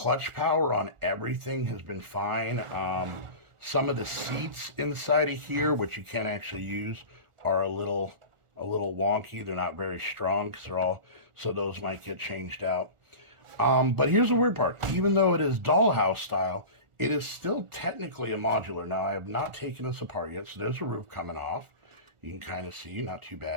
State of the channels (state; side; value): late; left; 1.4 ms